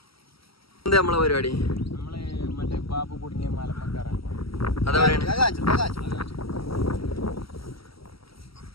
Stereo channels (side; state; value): right; late; 0.75 ms